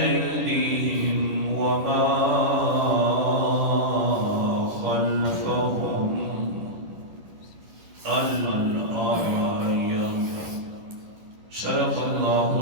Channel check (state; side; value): late; left; 10 ms